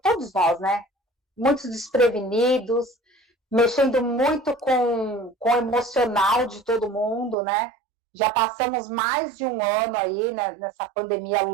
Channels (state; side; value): drops out; left; at 7.4 s